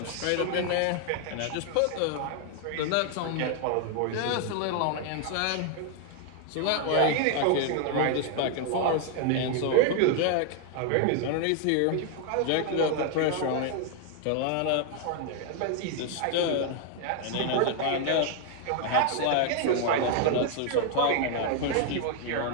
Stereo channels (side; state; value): both; different; correlation 0.00